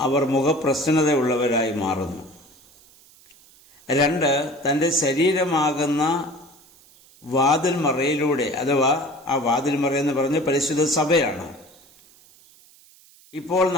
അവർ മുഖപ്രസന്നതയുള്ളവരായി മാറുന്നു. 2, തൻ്റെ ശരീരമാകുന്ന വാതിൽമറയിലൂടെ, അഥവാ ആ വാതിൽമറ എന്ന് പറഞ്ഞ പരിശുദ്ധ സഭയാണ്, ഇപ്പോൾ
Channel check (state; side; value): noise; right; hiss, 27 dB below the sound